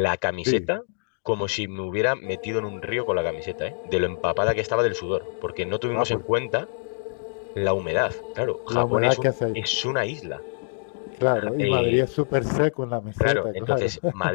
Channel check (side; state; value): right; silent; digital silence